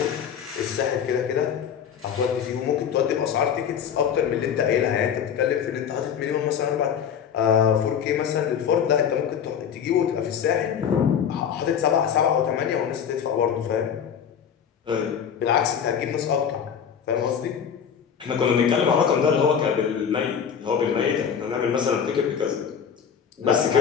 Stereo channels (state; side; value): quieter; right; 7.9 dB